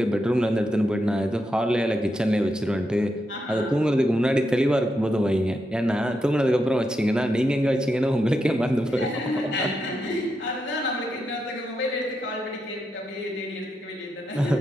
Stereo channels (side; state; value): both; normal; correlation 0.84